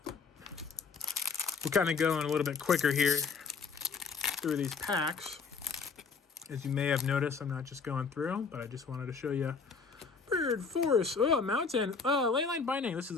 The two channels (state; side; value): quieter; right; 5.2 dB